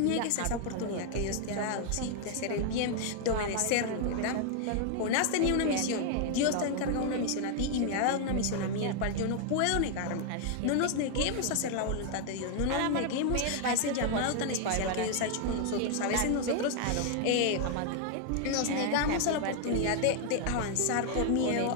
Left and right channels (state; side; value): different; both; correlation 0.00